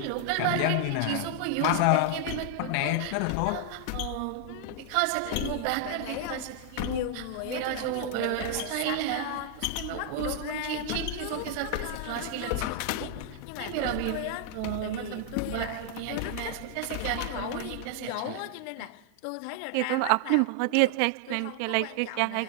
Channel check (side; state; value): both; different; correlation 0.00